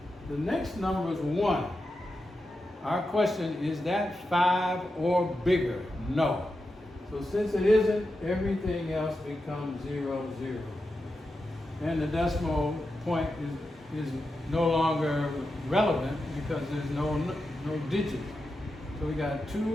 The next number is 1. Our question, is that 5 or bigger? No. So since it isn't, everything else becomes 0, 0. And the decimal point is no longer relevant because there's no digit. So we got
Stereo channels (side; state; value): both; normal; correlation 0.89